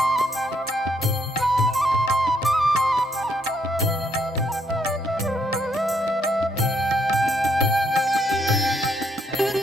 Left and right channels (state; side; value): normal; both; correlation 0.72